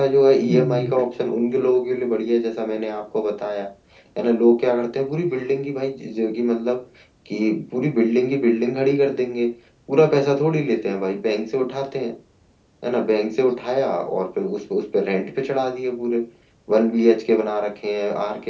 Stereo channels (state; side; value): identical; both; correlation 1.00